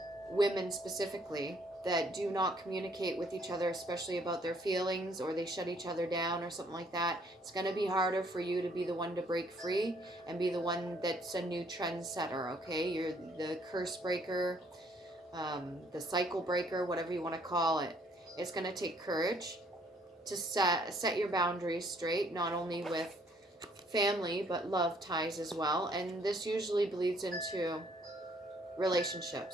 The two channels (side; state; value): both; normal; correlation 0.64